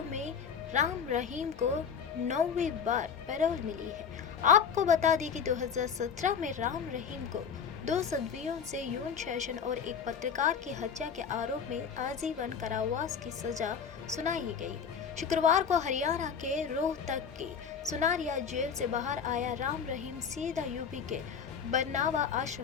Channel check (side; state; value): right; quieter; 6.8 dB